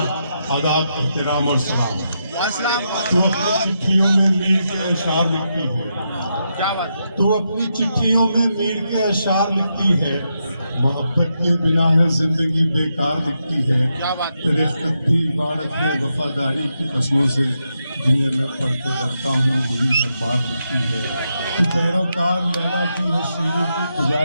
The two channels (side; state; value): both; inverted; correlation -0.84